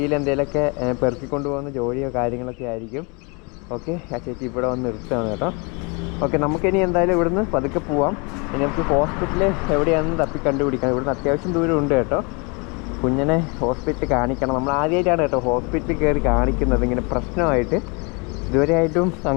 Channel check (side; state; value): right; quieter; 31.2 dB